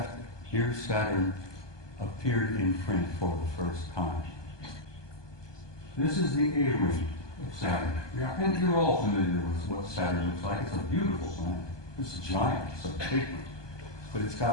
near Saturn appeared in print for the first time. This is the A-ring of Saturn. And you're all familiar with what Saturn looks like. It's a beautiful planet. It's giant. It's a big one. But it's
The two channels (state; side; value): late; right; 1.2 ms